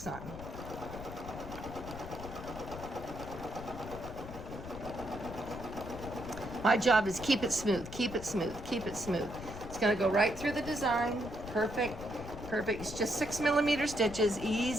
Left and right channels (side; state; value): left; noise; rumble, 11 dB below the sound